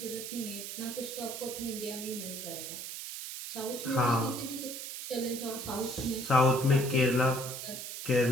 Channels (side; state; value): right; noise; hiss, 7 dB below the sound